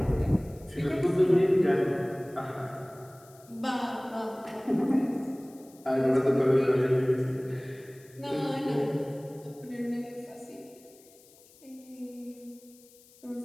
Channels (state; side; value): noise; left; hiss, 26 dB below the sound